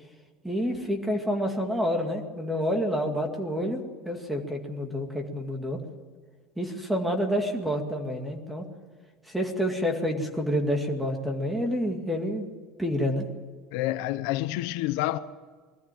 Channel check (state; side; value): normal; both; correlation 0.55